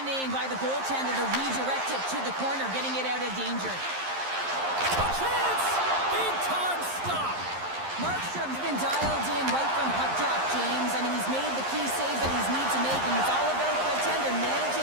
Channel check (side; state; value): left; late; 11 ms